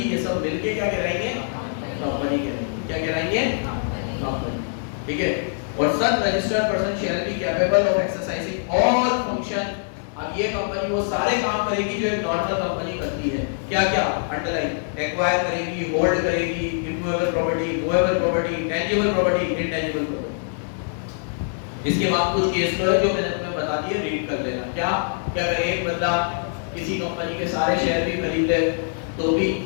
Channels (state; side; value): silent; right; 63 dB below the other